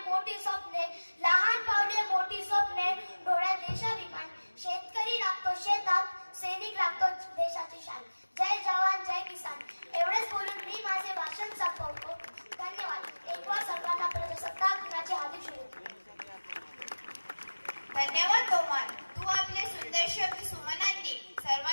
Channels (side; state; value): both; inverted; correlation -1.00